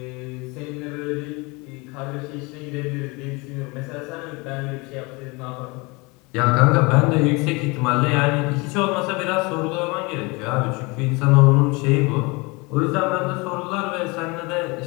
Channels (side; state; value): right; quieter; 26.6 dB